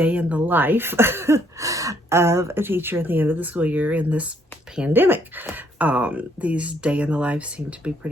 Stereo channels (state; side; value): normal; both; correlation 0.68